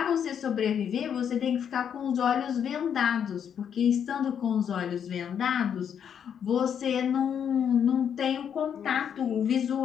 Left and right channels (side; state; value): right; quieter; 8.2 dB